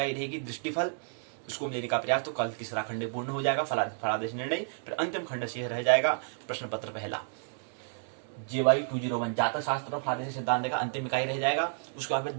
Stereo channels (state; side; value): silent; left; digital silence